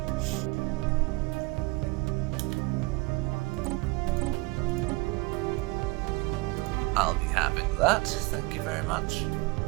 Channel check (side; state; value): left; quieter; 24.9 dB